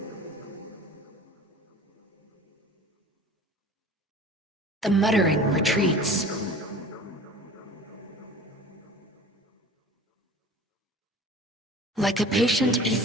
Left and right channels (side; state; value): both; normal; correlation 0.42